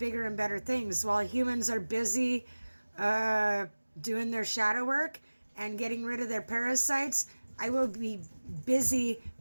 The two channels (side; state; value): both; inverted; correlation -1.00